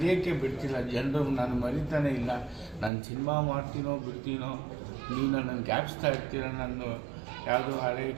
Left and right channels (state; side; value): drops out; left; at 2.9 s